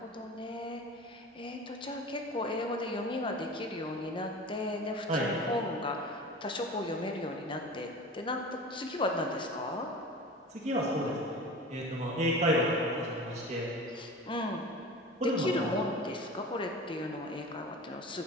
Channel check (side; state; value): both; normal; correlation 0.36